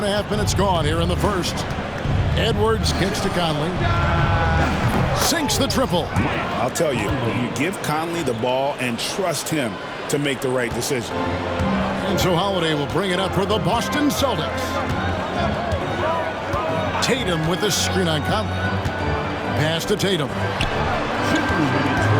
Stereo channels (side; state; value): both; identical; correlation 1.00